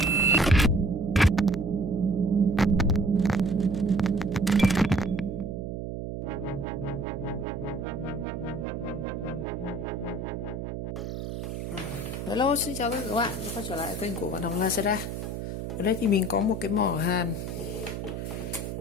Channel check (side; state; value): right; noise; hum, 6 dB below the sound